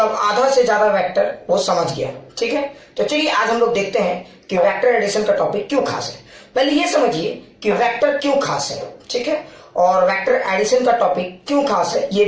आधा से ज्यादा वेक्टर वो समझ गया। ठीक है, तो चलिए आज हम लोग देखते हैं कि वेक्टर एडिशन का टॉपिक क्यों खास है। पहले ये समझिए कि वेक्टर क्यों खास है, ठीक है, और वेक्टर एडिशन का टॉपिक क्यों खास है ये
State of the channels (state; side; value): identical; both; correlation 1.00